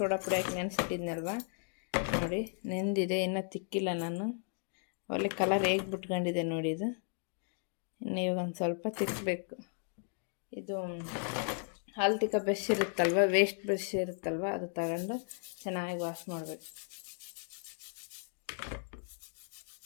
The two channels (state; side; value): silent; right; 54 dB below the other